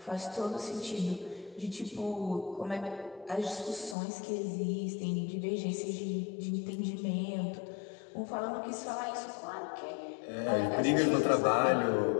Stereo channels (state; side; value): drops out; right; at 4.0 s